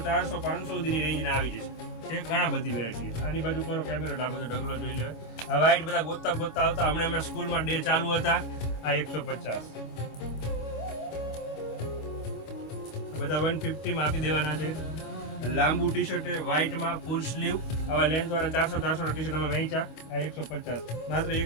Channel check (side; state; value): right; late; 25 ms